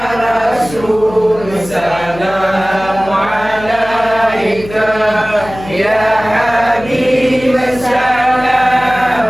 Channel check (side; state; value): left; noise; hum, 15 dB below the sound